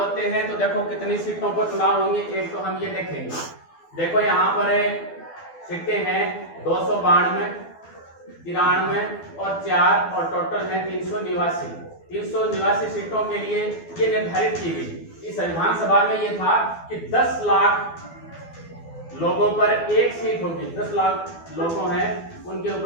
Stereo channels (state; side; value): late; right; 12 ms